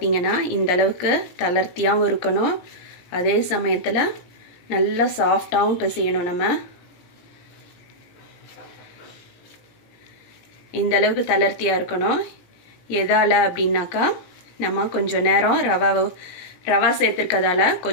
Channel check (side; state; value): right; late; 18 ms